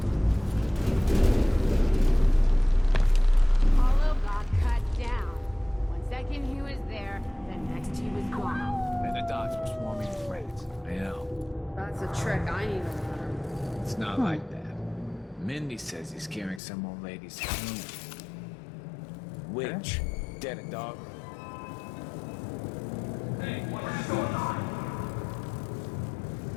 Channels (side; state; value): right; drops out; at 16.6 s